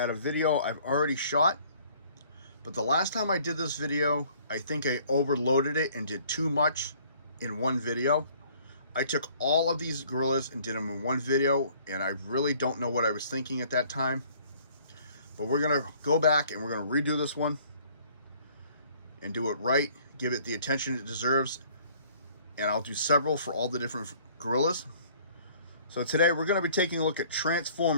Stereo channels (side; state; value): both; inverted; correlation -0.57